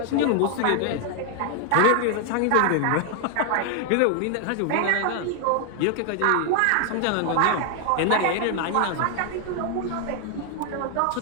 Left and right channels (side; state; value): both; different; correlation 0.00